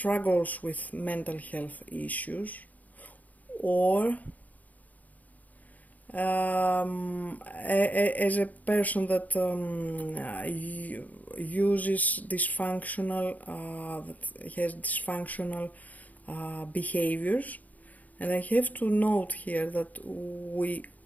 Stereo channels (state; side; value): late; right; 0.078 ms